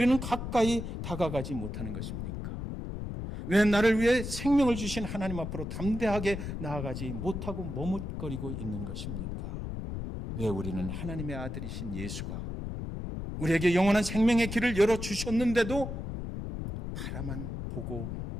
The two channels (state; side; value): noise; left; rumble, 6 dB below the sound